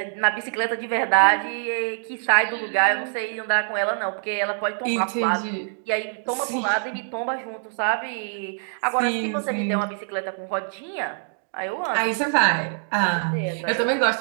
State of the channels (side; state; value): left; silent; digital silence